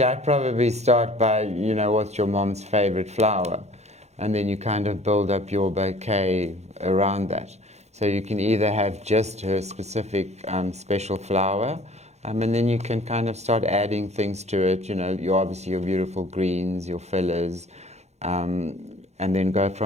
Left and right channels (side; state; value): left; late; 0.32 ms